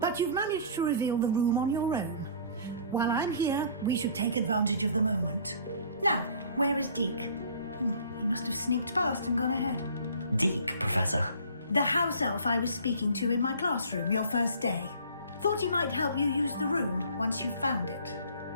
But you've managed to reveal the room on your own. While I'm here, we should take advantage of the moment. Now, where is Deke? He must have sneaked past and gone ahead. Deke, Professor. The house elf I was speaking to in my classroom your first day. Thought he might help you use the room once you found it.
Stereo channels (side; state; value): both; inverted; correlation -0.49